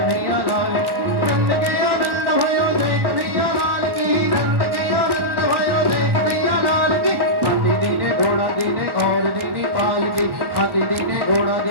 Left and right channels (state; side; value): late; left; 1.3 ms